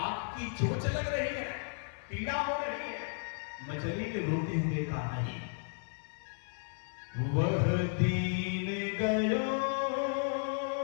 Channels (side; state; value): right; silent; 55 dB below the other